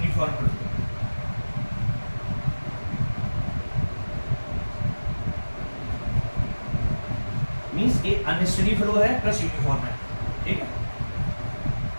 फ्लो। मींस ये अनस्टेडी फ्लो है प्लस यूनिफॉर्म है। ठीक है,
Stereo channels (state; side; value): inverted; both; correlation -1.00